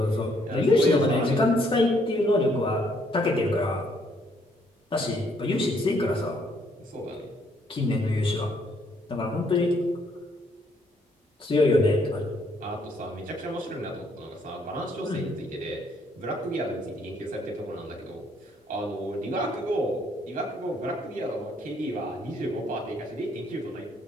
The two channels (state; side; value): normal; both; correlation 0.68